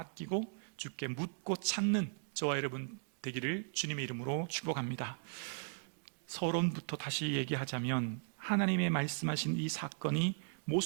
주께 묻고 찾는 저와 여러분 되기를 주님의 이름으로 축복합니다. 서론부터 다시 얘기하자면 하나님의 말씀하신 이 사건이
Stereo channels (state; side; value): silent; left; digital silence